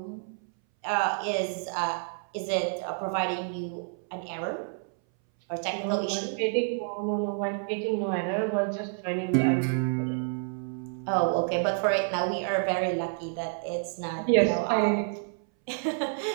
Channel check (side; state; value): left; silent; 59 dB below the other